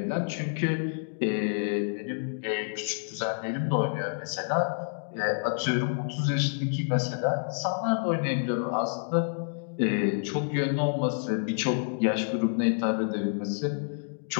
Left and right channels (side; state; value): right; silent; digital silence